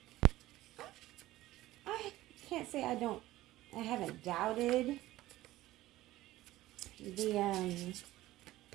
I can't say I haven't doubted the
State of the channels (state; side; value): quieter; left; 16.3 dB